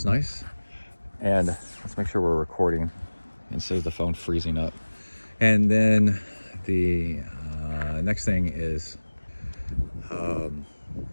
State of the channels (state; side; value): inverted; both; correlation -1.00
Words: nice. And let's make sure we're recording instead of the phone freezing up. And then the next thing is